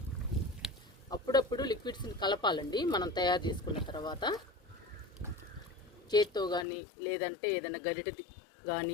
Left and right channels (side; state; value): right; drops out; at 6.7 s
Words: అప్పుడప్పుడు లిక్విడ్స్ని కలపాలండి మనం తయారు చేసుకున్న తర్వాత. చేత్తో కానీ లేదంటే ఏదైనా గరిటె